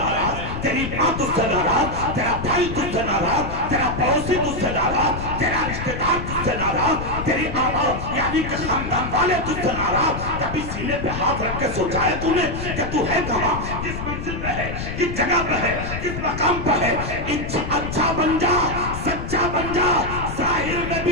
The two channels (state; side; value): noise; left; rumble, 6 dB below the sound